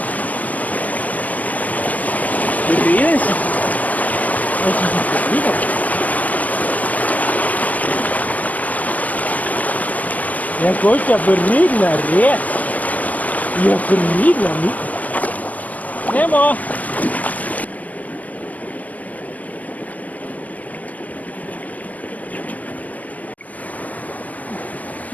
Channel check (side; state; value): right; late; 0.078 ms